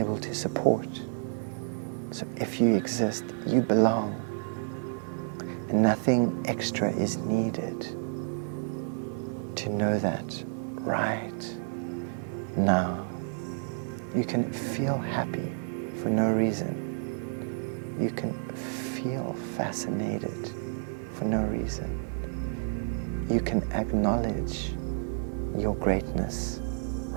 to support. So if you exist, you belong, and nothing extra is needed to know that right now. You can feel happy for no reason. You can feel fascinated for no reason. You can acknowledge your greatness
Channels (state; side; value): silent; left; digital silence